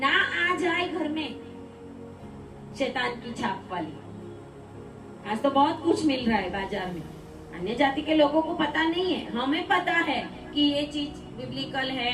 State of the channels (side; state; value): both; identical; correlation 1.00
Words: आ जाए घर में, शैतान की छाप वाली। आज तो बहुत कुछ मिल रहा है बाजार में, अन्य जाति के लोगों को पता नहीं है, हमें पता है कि ये चीज बिब्लिकल है,